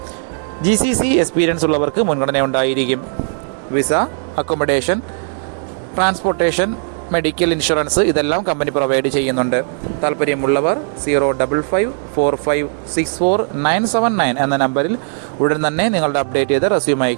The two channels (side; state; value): left; silent; digital silence